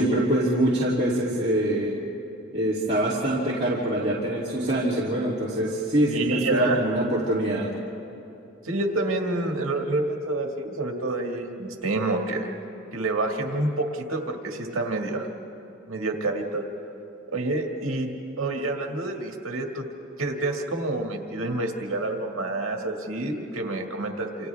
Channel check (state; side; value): normal; both; correlation 0.32